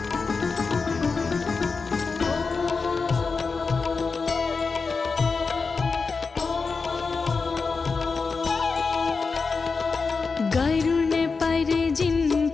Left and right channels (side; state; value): right; quieter; 4.6 dB